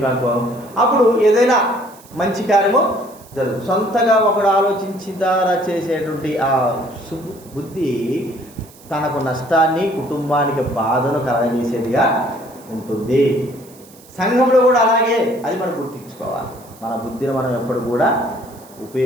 అప్పుడు ఏదైనా మంచి కార్యము జరుగుతుంది. సొంతగా ఒకడు ఆలోచించిన ద్వారా చేసేటువంటి ఆ బుద్ధి తనకు నష్టాన్ని, కుటుంబానికి బాధను కలగజేసేదిగా ఉంటుంది. సంఘంలో కూడా అలాగే, అది మనం గుర్తించుకోవాలి. మన బుద్ధిని మనం ఎప్పుడు కూడా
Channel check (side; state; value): right; noise; hiss, 24 dB below the sound